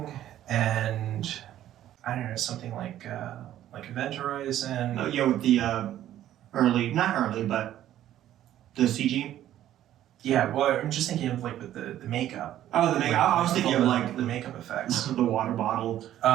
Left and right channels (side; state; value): left; quieter; 12.3 dB